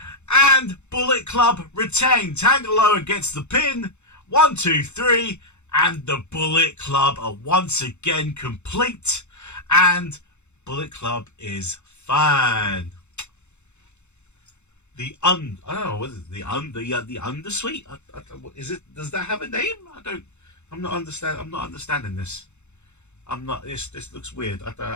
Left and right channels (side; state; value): right; late; 0.82 ms